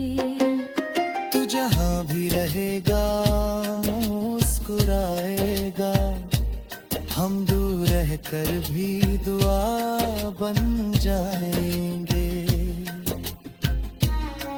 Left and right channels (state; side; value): identical; both; correlation 1.00